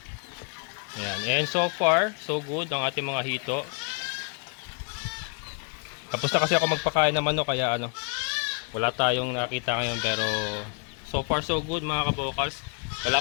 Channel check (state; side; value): quieter; right; 39.2 dB